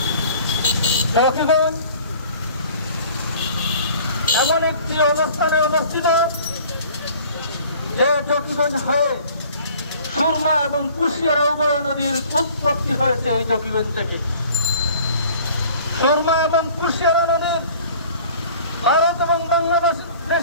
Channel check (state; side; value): inverted; both; correlation -0.50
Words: জকিগঞ্জ এমন একটি অবস্থানে অবস্থিত যে জকিগঞ্জ হয়ে সুরমা এবং কুশিয়ারা উভয় নদীর উৎপত্তি হয়েছে এই জকিগঞ্জ থেকে। সুরমা এবং কুশিয়ারা নদীর ভারত এবং